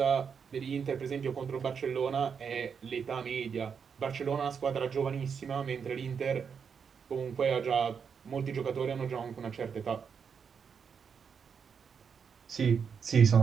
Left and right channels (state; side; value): quieter; left; 6.5 dB